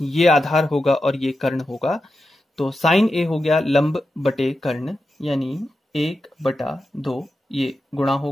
आधार होगा और ये कर्ण होगा। तो sin a हो गया लंब बटे कर्ण यानी 1/2, ये गुणा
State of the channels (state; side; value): normal; both; correlation 0.90